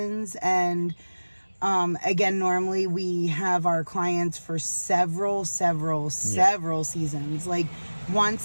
And again, normally we have our clients for several seasons. Like,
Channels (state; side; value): inverted; both; correlation -1.00